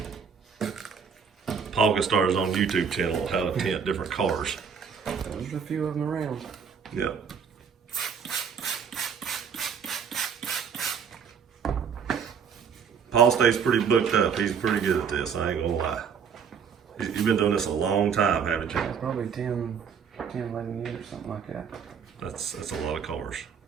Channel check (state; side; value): quieter; left; 6.7 dB